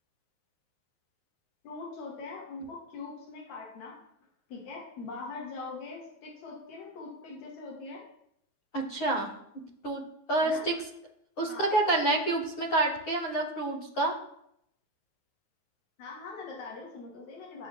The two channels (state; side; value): late; right; 9.4 ms